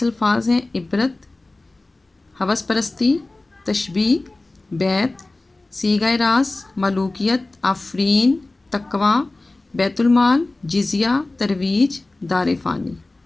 الفاظ ہیں: عبرت، ہوس پرستی، تشبیہ، بیت، صیغہ راز، ملوکیت، آفرین، تقویٰ، بیت المال، جزیہ، ترویج، دار فانی۔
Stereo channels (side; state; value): right; quieter; 3.0 dB